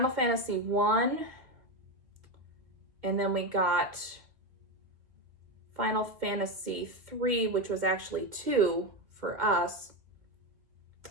Fantasy 1, and then we got Final Fantasy 3, which was actually 2 for us.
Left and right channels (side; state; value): left; late; 1.7 ms